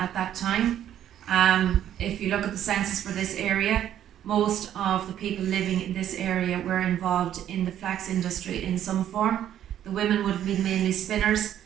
that time. If you look at the census for this area, most of the people living in this area were involved in the flax industry in some form. The women would have been mainly spinners,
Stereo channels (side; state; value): left; quieter; 10.9 dB